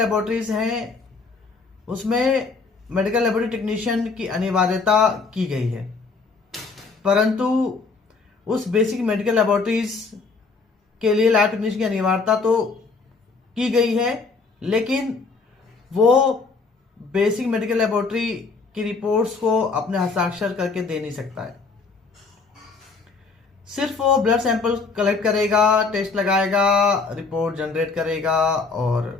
हैं उसमें मेडिकल लेबोरेटरी टेक्नीशियन की अनिवार्यता की गई है, परंतु उस बेसिक मेडिकल लेबोरेटरीज के लिए लैब टेक्नीशियन की अनिवार्यता तो की गई है, लेकिन वो बेसिक मेडिकल लेबोरेटरी की रिपोर्ट्स को अपने हस्ताक्षर करके दे नहीं सकता है। सिर्फ वो ब्लड सैंपल कलेक्ट करेगा, टेस्ट लगाएगा, रिपोर्ट जनरेट करेगा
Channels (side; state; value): right; quieter; 4.3 dB